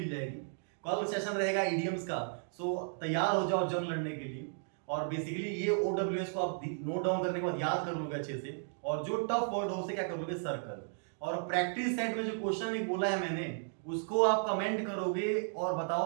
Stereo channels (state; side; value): silent; left; digital silence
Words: जाएगी। कल सेशन रहेगा इडियम्स का। सो तैयार हो जाओ जंग लड़ने के लिए। और बेसिकली ये OWS को आप नोट डाउन करने के बाद याद कर लोगे अच्छे से, और जो टफ वर्ड हो उसे क्या कर लोगे? सर्कल। और प्रैक्टिस सेट में जो क्वेश्चन एक बोला है मैंने, उसको आप कमेंट करोगे और